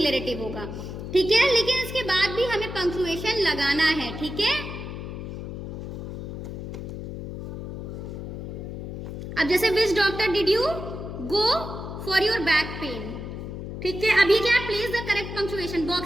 होगा. ठीक है. लेकिन इसके बाद भी हमें पंक्चुएशन लगाना है. ठीक है. अब जैसे which doctor did you go for your back pain. ठीक है. अभी क्या है, place the correct punctuation.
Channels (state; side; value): noise; left; hum, 8 dB below the sound